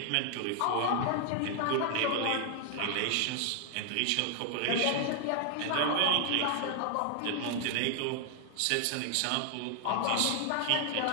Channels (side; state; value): both; different; correlation 0.00